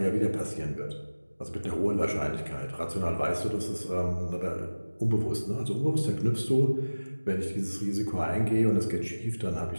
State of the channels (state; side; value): inverted; both; correlation -1.00